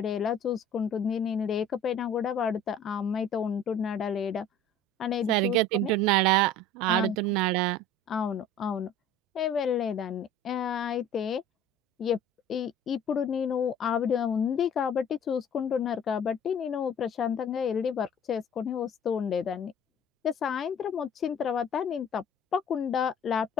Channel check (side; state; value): both; normal; correlation 0.47